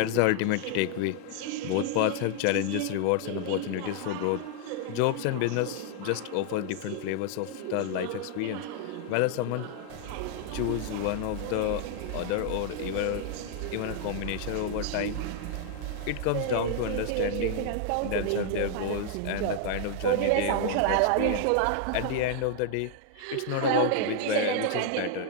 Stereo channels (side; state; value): both; different; correlation 0.00